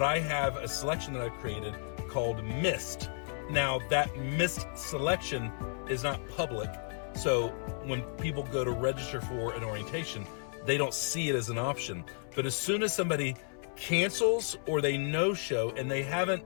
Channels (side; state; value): right; silent; 56 dB below the other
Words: I have a selection that I've created called Missed. Now that missed selection is not public. So when people go to register for an orientation, they don't see it as an option. But as soon as somebody cancels or they no-show and they